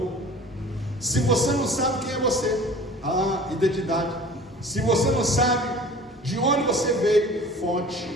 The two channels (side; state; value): both; normal; correlation 0.44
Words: Se você não sabe quem é você, identidade. Se você não sabe de onde você veio,